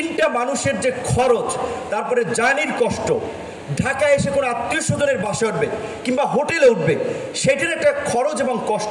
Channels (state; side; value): identical; both; correlation 1.00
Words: মানুষের যে খরচ, তারপরে জার্নির কষ্ট, ঢাকায় এসে কোনো আত্মীয় স্বজনের বাসে উঠবে কিংবা হোটেলে উঠবে, সেটার একটা খরচ এবং